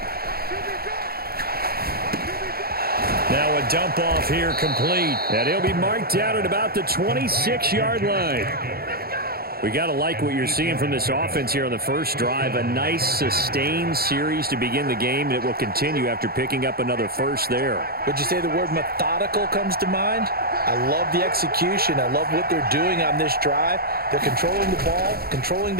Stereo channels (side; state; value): left; late; 0.44 ms